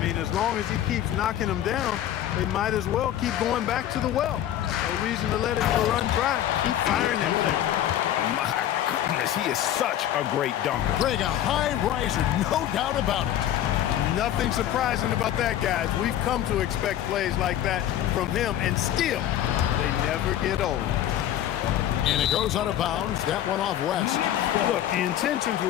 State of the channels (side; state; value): right; quieter; 11.7 dB